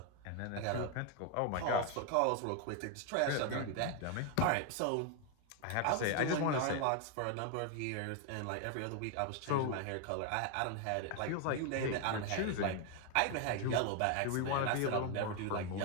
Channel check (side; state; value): both; different; correlation 0.01